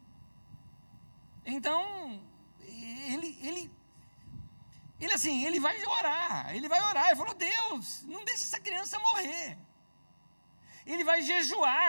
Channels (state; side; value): inverted; both; correlation -1.00